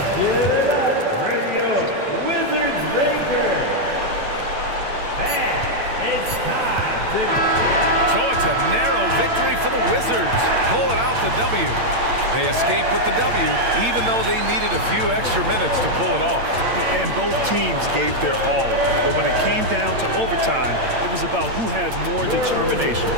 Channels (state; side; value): late; left; 8.7 ms